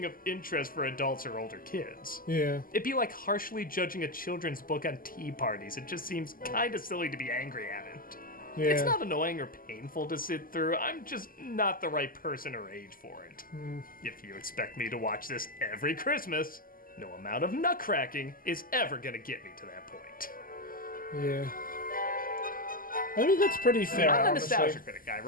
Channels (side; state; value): right; late; 0.41 ms